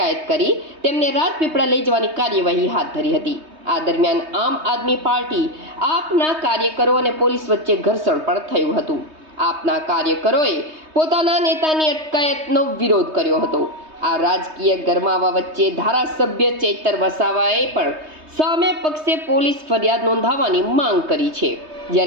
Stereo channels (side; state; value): left; late; 3.2 ms